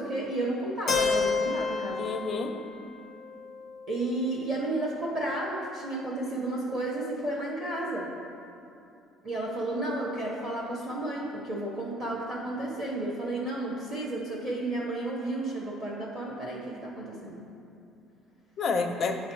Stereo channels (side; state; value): both; normal; correlation 0.59